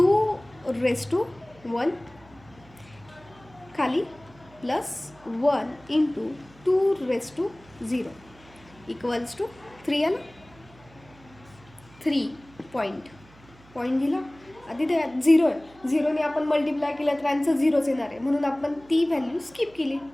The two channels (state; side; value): noise; right; hum, 25 dB below the sound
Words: रेस टू 1 खाली plus 1 × 2 raise to 0 equals to 3 आलं. 3 पॉईंट दिला. आधी ते 0 आहे, 0ने आपण मल्टिप्लाय केलं तर आन्सर 0च येणार आहे. म्हणून आपण ती व्हॅल्यू स्किप केली.